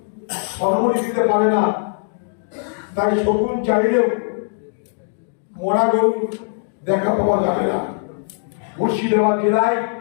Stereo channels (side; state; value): right; silent; digital silence